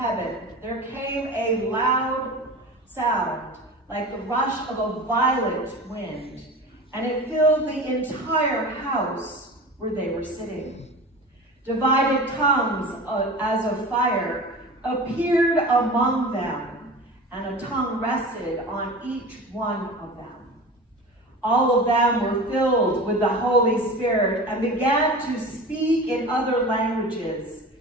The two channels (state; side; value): normal; both; correlation 0.34